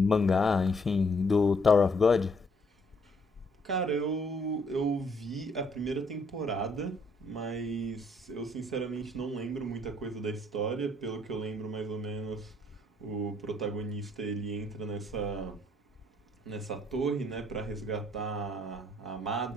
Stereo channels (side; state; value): both; normal; correlation 0.67